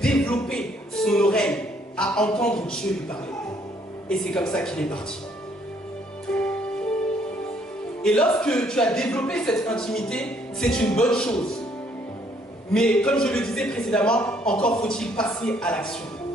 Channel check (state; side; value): normal; both; correlation 0.66